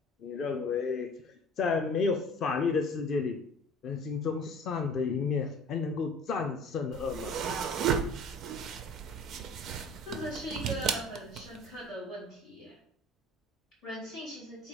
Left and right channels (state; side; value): normal; both; correlation 0.45